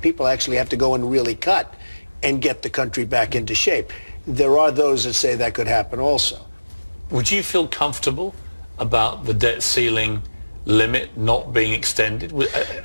actually have to go and really cut and get the country back into shape. There are those that say that could happen also. Would you feel comfortable about the debt ceiling limit not being extended?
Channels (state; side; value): inverted; both; correlation -1.00